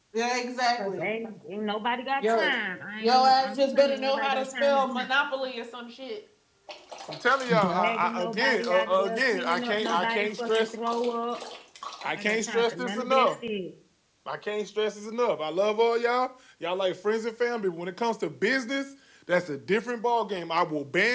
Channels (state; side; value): identical; both; correlation 1.00